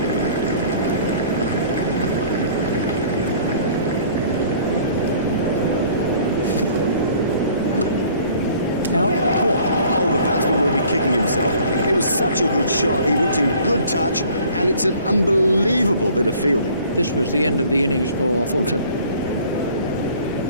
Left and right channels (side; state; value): both; inverted; correlation -0.52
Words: Out, caught. Oh, the batsman will be kicking himself. It was such a good shot. He looked in good touch, and it's an unbelievable bit of fielding. This was the end of the innings for Fulton.